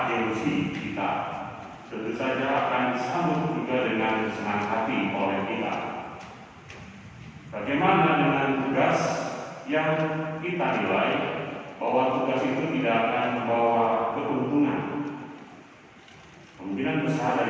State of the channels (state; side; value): identical; both; correlation 1.00